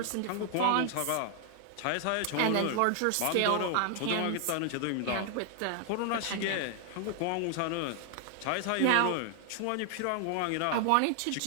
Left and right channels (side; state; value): both; different; correlation 0.00